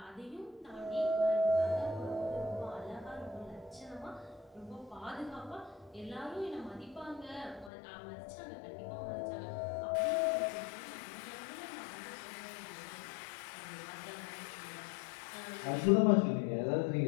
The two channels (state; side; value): drops out; right; at 7.7 s